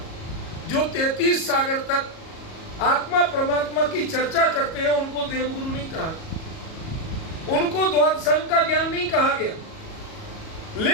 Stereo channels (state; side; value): late; right; 37 ms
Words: जो 33 सागर तक आत्मा परमात्मा की चर्चा करते हैं उनको देव गुरु नहीं कहा, उनको द्वादशांग का ज्ञान नहीं कहा गया।